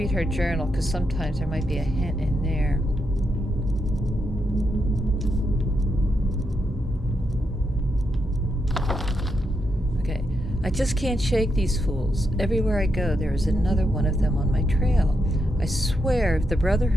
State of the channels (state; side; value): normal; both; correlation 0.83